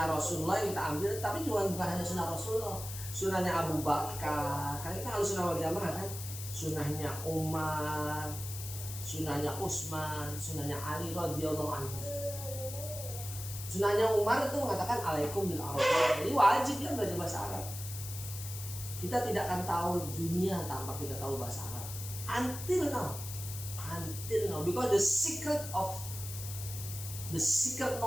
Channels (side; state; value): left; noise; hiss, 9 dB below the sound